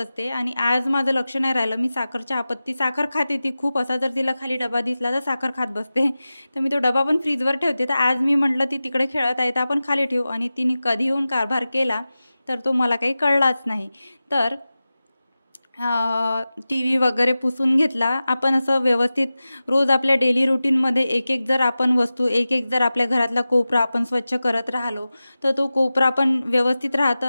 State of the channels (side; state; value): both; inverted; correlation -0.95